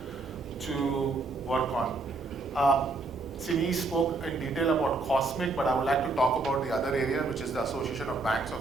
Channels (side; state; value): left; quieter; 3.4 dB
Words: to work on. Sini spoke in detail about COSMIC, but I would like to talk about the other area, which is the Association of Banks